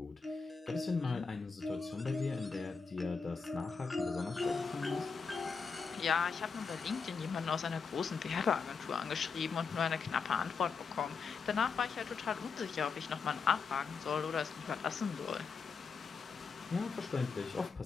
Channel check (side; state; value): right; quieter; 5.2 dB